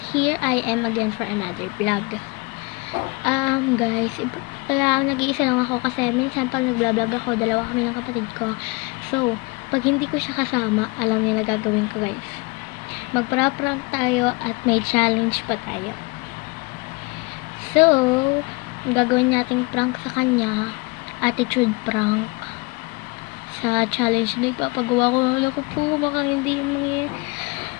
here I am again for another vlog. Guys, kaya nag-iisa lang ako kasi minsan pag nag-vlog ako, dalawa kami ng kapatid ko. So, pag hindi ko siya kasama, alam niya na gagawin ko, guys. Magpra-prank tayo at may challenge pa tayo. So, gagawin nating prank sa kanya, attitude prank. Sa challenge na ipapagawa ko, wala ko po, baka hindi mangyayari.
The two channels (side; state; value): right; quieter; 27.3 dB